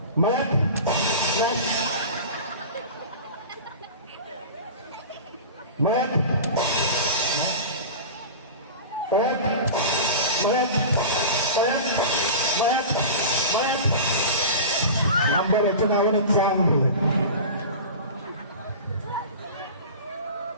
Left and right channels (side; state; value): both; inverted; correlation -0.32